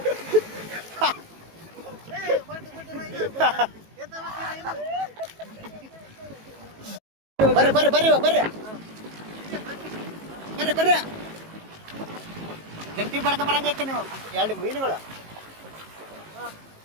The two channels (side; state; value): left; late; 18 ms